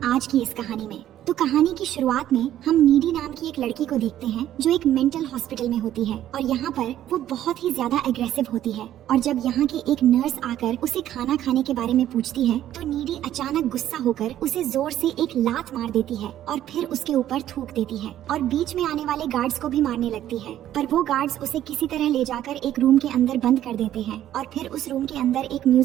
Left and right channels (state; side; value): quieter; left; 12.1 dB